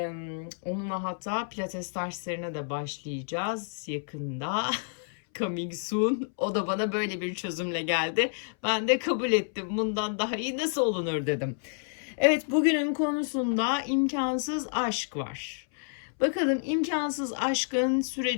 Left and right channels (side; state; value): right; silent; 58 dB below the other